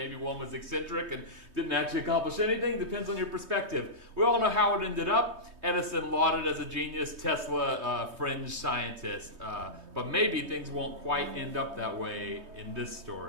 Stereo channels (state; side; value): late; left; 3.2 ms